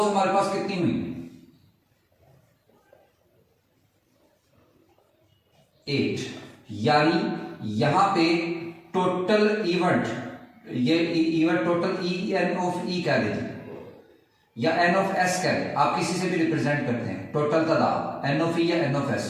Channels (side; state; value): both; identical; correlation 1.00